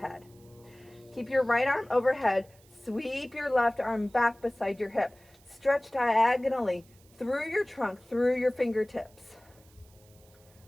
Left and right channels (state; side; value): noise; right; hiss, 29 dB below the sound